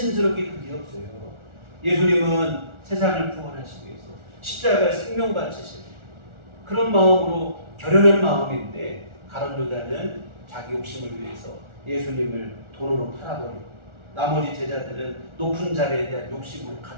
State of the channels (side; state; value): left; late; 1.4 ms